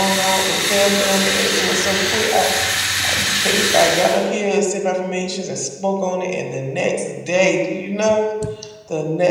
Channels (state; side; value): identical; both; correlation 1.00